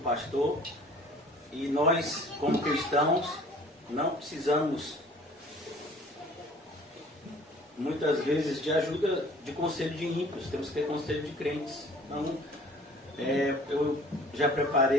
E nós, como cristãos, não precisamos, muitas vezes, de ajuda de conselho de ímpios. Temos que ter conselho de crentes. Então, eu já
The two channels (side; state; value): both; normal; correlation 0.50